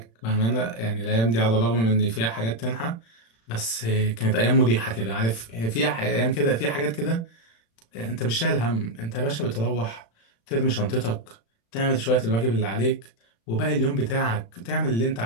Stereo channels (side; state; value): right; late; 35 ms